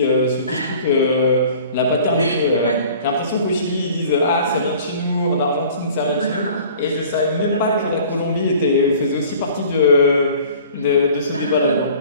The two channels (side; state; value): both; inverted; correlation -0.48